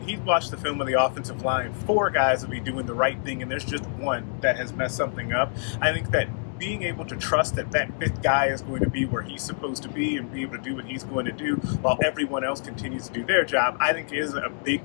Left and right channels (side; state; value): right; silent; digital silence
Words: he watched the film of the offensive line, 4 guys will be doing the right thing and there's just one that has messed something up. I think that being able to trust that 5th guy is going to be where he's supposed to be and be able to do what he's going to do while everyone else continues to do their job, I think is a